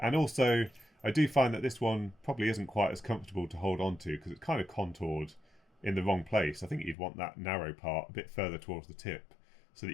also I do find that this one probably isn't quite as comfortable to hold on to because it's kind of contoured in the wrong place. I think you'd want that narrow part a bit further towards the tip so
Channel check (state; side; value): drops out; right; at 7.0 s